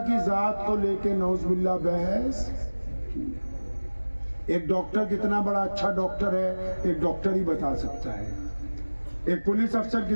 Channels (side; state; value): both; inverted; correlation -1.00